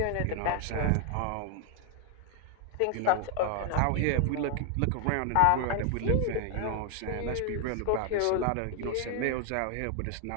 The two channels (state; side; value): different; both; correlation 0.00